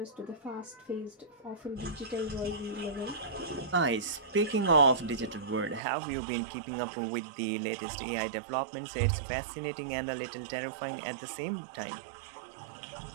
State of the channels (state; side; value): drops out; left; at 5.8 s